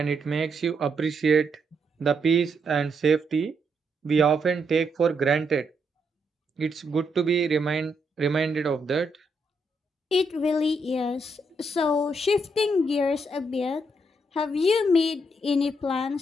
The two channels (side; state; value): both; normal; correlation 0.78